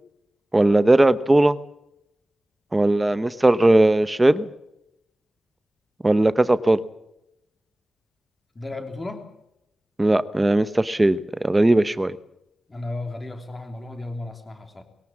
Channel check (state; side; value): normal; both; correlation 0.98